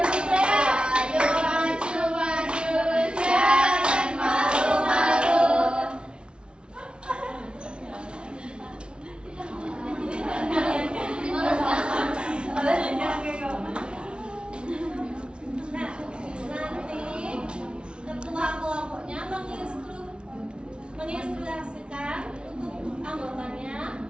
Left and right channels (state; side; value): late; left; 0.056 ms